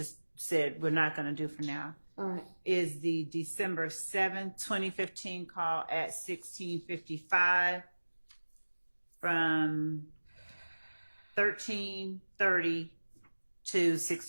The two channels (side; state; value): both; inverted; correlation -1.00